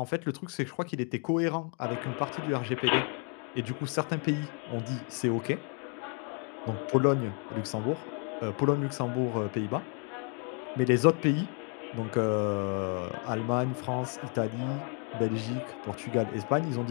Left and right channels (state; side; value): quieter; right; 38.5 dB